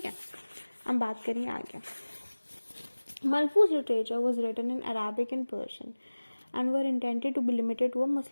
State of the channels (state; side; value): inverted; both; correlation -1.00